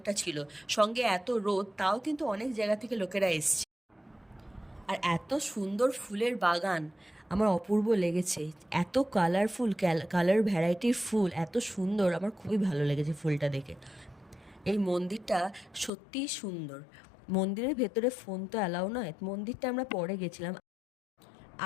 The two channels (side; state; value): right; drops out; at 15.9 s